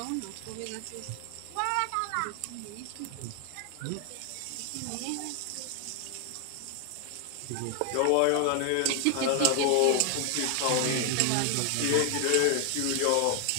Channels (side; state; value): both; different; correlation 0.00